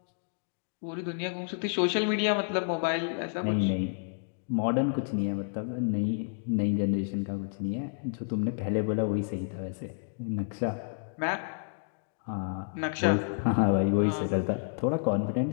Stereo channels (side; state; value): right; silent; digital silence